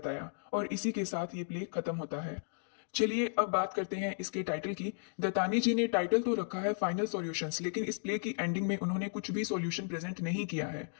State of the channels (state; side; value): silent; right; digital silence